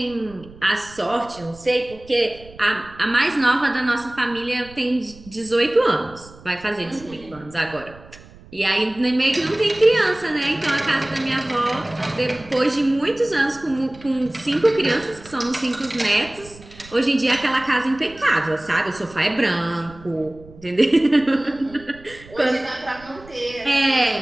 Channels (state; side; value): noise; right; rumble, 21 dB below the sound